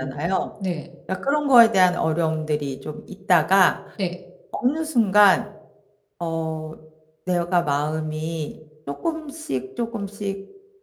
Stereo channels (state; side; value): identical; both; correlation 1.00